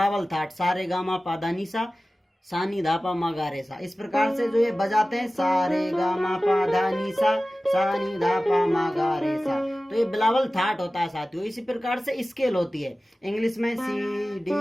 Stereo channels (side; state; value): both; normal; correlation 0.96